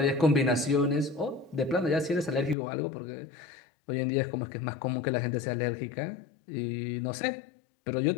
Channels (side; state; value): right; drops out; at 2.6 s